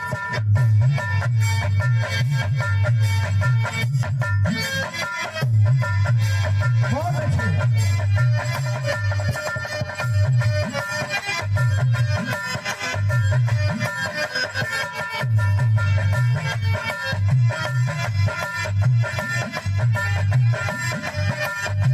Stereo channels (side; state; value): both; identical; correlation 1.00